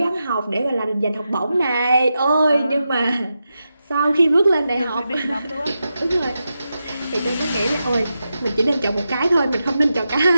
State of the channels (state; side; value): inverted; both; correlation -0.89